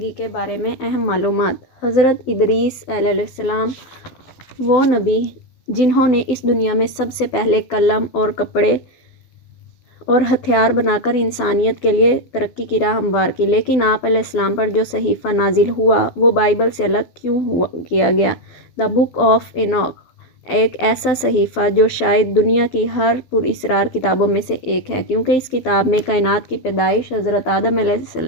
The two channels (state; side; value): late; right; 12 ms